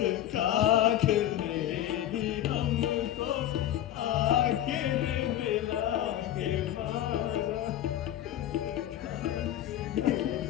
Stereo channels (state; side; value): quieter; right; 12.1 dB